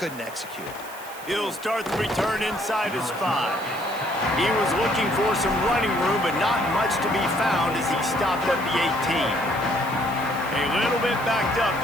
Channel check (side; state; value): right; noise; hiss, 17 dB below the sound